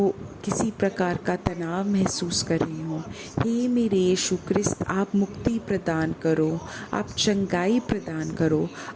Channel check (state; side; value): identical; both; correlation 1.00